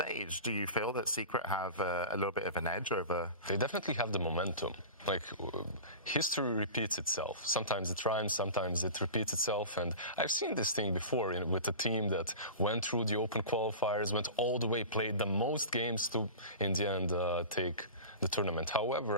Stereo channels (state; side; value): inverted; both; correlation -0.33